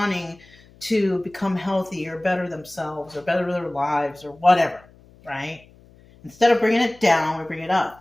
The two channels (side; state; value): left; noise; hum, 26 dB below the sound